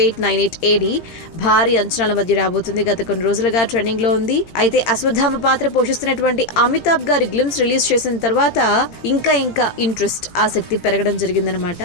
AD భారీ అంచనాల మధ్య రాబోతుంది. గత కొన్ని రోజులుగా ట్రెండింగ్ లో ఉంది. అయితే అశ్వత్థామ పాత్ర పోషిస్తున్నటువంటి అమితాబ్ గారి గ్లిమ్స్ రిలీజ్ చేసిన తర్వాత ఇంకా ఇంట్రెస్ట్, ఆసక్తి పెరగడం జరిగిందనమాట.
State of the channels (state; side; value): late; right; 18 ms